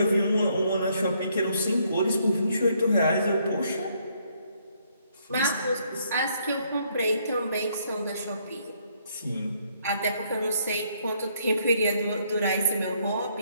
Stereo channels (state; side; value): inverted; both; correlation -0.70